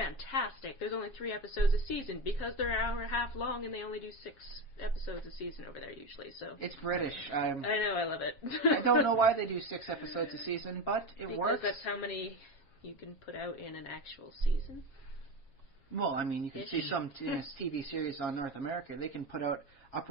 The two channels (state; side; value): late; right; 7.3 ms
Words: There's only 3 episodes a season because they're an hour and a half long, and they only do 6 episodes a season over there usually. So it's British. I know, I love it. I don't know why they do 6 episodes a season, but it works. Because that's how many you can put out in an actual season. Well, I mean, you can see some TV series on North America. They can put out